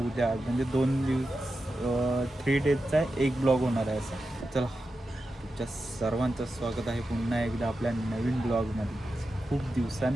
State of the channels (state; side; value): normal; both; correlation 0.90